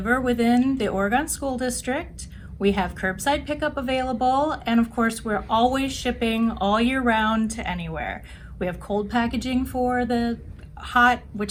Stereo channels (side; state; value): both; identical; correlation 1.00